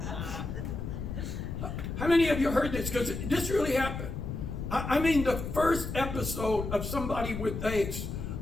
How How many of you heard this? Because this really happened. I mean, the first episode of somebody with AIDS,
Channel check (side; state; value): left; noise; rumble, 5 dB below the sound